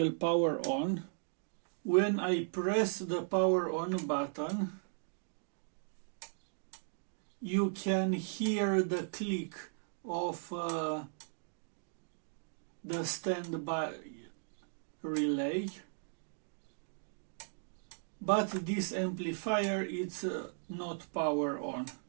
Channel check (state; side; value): silent; left; digital silence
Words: power on. When I press the power on button, you can hear the click of the standby relay. But this amplifier is not power on.